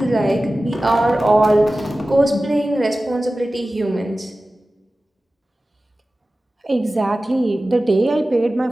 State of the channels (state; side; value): normal; both; correlation 0.96